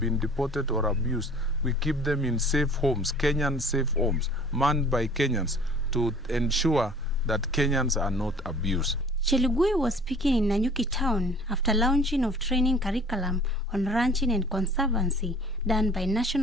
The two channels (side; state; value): both; normal; correlation 0.50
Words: been deported or abused. We keep them in safe homes, Kenyan safe homes, manned by Kenyans to ensure that Kenyans are not abused. Chelugui was speaking in Nanyuki town after launching of training curriculum on ranching and conservancy done by